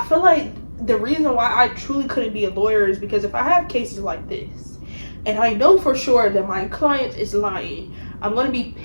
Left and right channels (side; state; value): both; inverted; correlation -1.00